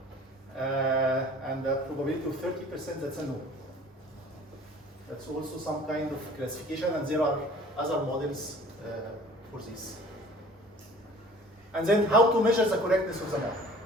and a probability of 30%, that's a no. That's also some kind of classification, and there are other models for this. And then how to measure the correctness of the model.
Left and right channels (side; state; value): both; normal; correlation 0.48